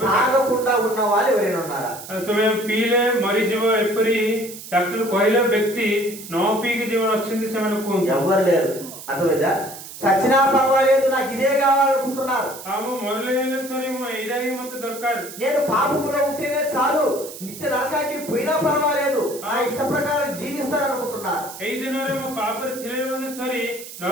తాగకుండా ఉన్న వాళ్ళు ఎవరైనా ఉన్నారా? ତୁମେ ପିଇଲେ ମରିଯିବ ଏପରି ଡାକ୍ତର କହିଲା ବ୍ୟକ୍ତି ନ ପିଇକି ଯେଉଁମାନେ ଅଛନ୍ତି ସେମାନେ କୁହନ୍ତୁ। ఎవరు లేరు, అర్థమైందా? చచ్చినా పర్వాలేదు, నాకు ఇదే కావాలనుకుంటున్నారు। ମୁଁ ମରିଲେ ହେଲେ ସରି, ମୁଁ ଏଇଟା ହିଁ ମତେ ଦରକାର, నేను పాపములో ఉంటేనే చాలు, నిత్య నరకానికి పోయినా పర్వాలేదు, నా ఇష్ట ప్రకారం జీవిస్తారనుకుంటున్నారు। ଏଇ ଦିନରେ ମୁଁ ପାପରେ ଥିଲେ ମଧ୍ୟ ସରି,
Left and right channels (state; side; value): noise; right; hiss, 13 dB below the sound